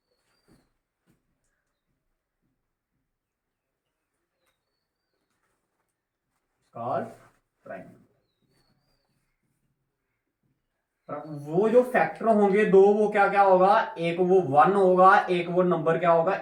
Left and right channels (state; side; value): identical; both; correlation 1.00